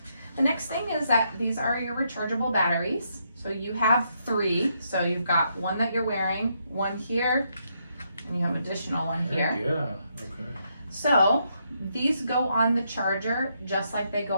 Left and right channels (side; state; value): both; inverted; correlation -0.77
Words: The next thing is that these are your rechargeable batteries. So you have 3. So you've got one that you're wearing, one here, and you have an additional one here. Yeah, okay. So these go on the charger just like they go